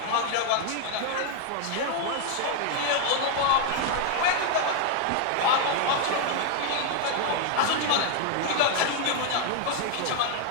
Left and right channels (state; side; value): different; both; correlation 0.00